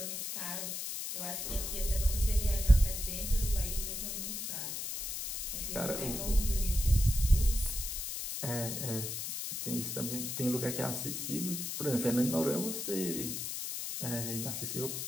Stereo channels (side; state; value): left; noise; hiss, 4 dB below the sound